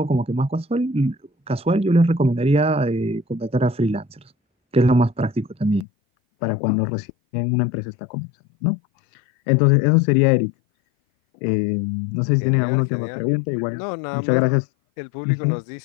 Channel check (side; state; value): right; drops out; at 5.9 s